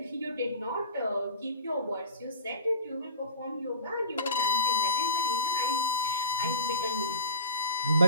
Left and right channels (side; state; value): both; inverted; correlation -0.37